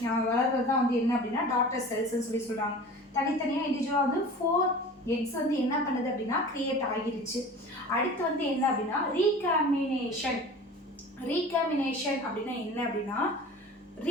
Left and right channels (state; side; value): normal; both; correlation 0.39